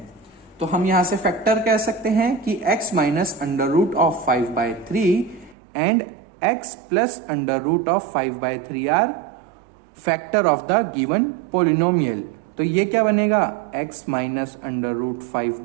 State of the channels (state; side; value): drops out; left; at 5.6 s